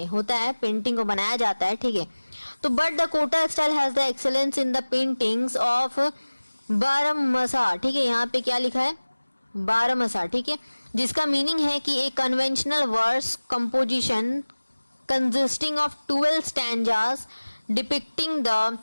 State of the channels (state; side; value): inverted; both; correlation -1.00